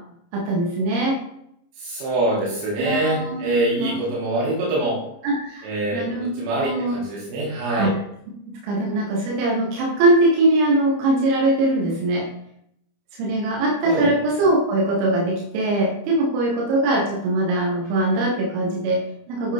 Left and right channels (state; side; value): late; left; 30 ms